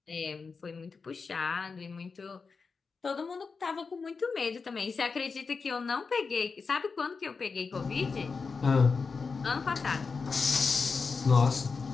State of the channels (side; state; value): right; quieter; 4.8 dB